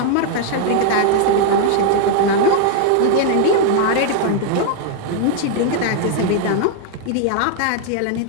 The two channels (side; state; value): both; different; correlation 0.00